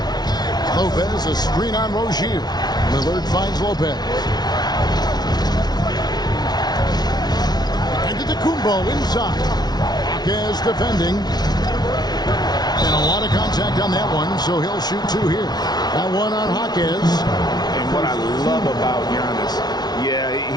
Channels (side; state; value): right; late; 0.19 ms